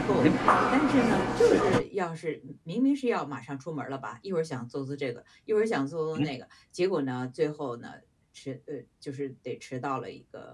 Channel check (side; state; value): both; identical; correlation 1.00